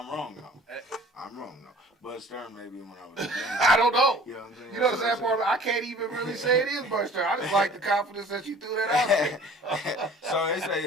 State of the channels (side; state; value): both; normal; correlation 0.48